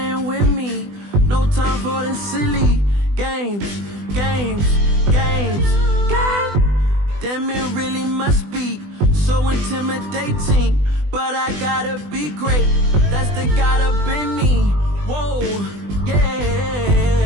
with me. No time for the silly games. Games. God damn, it really must be so intimidating. But I gotta be great. That's the God up in me. Whoa, yeah.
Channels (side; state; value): left; late; 20 ms